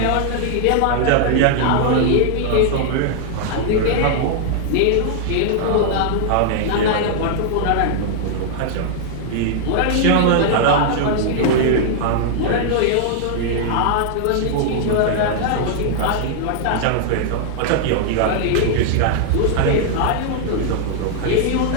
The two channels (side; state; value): both; different; correlation -0.01